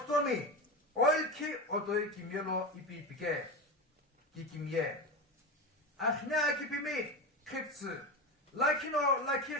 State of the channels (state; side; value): normal; both; correlation 0.21